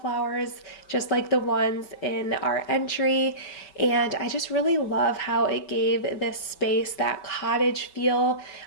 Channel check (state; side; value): late; right; 5.3 ms